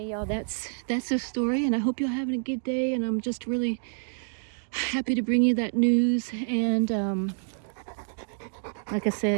y'all, that's the story, and I hope you're having a good day, and I'm just really happy to bring you that news. And like I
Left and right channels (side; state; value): left; silent; digital silence